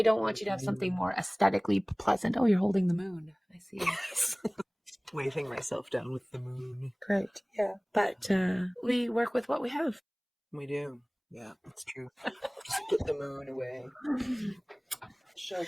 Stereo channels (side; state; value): both; identical; correlation 1.00